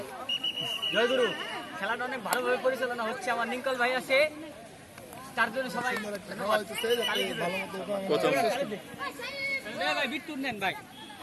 জয়গুরু, খেলাটা অনেক ভালোভাবে পরিচালনা হচ্ছে। আমার নিকল ভাই আছে, তার জন্য সবাই প্রথম ভাই বিট্টুর নেন ভাই।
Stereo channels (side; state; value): both; identical; correlation 1.00